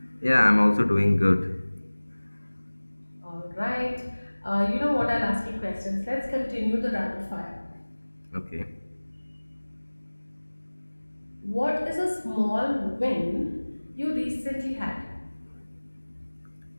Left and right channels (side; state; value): both; inverted; correlation -1.00